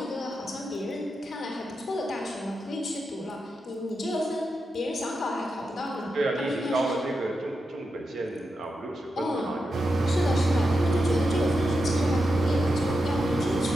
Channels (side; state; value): both; normal; correlation 0.88